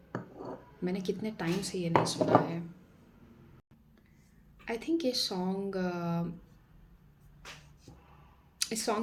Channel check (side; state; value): both; identical; correlation 1.00